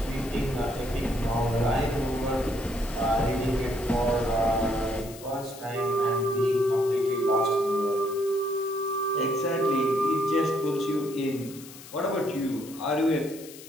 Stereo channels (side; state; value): left; noise; hiss, 17 dB below the sound